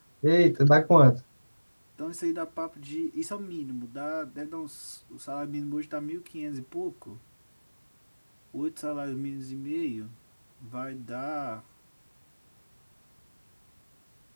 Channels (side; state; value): both; inverted; correlation -1.00